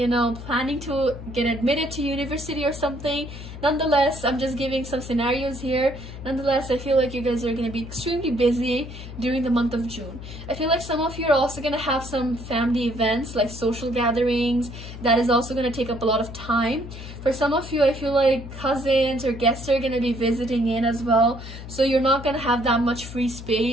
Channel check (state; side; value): noise; left; hum, 11 dB below the sound